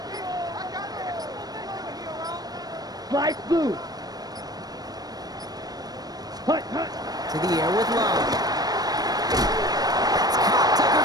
Slice blue. Hut, hut. To the air with Love. That's caught. Tucker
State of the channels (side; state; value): left; late; 0.19 ms